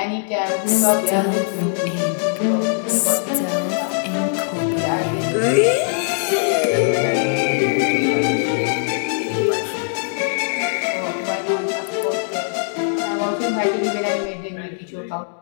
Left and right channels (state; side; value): silent; right; digital silence